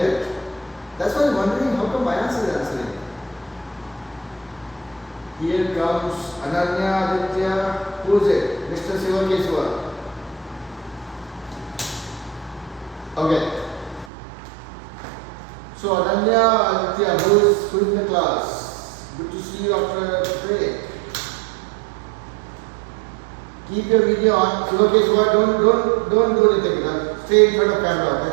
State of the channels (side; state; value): left; drops out; at 14.1 s